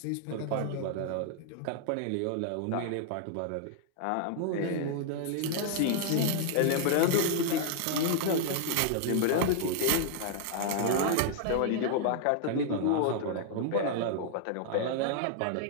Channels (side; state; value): both; different; correlation 0.00